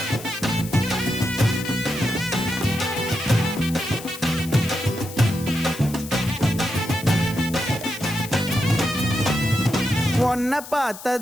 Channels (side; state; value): left; noise; hiss, 14 dB below the sound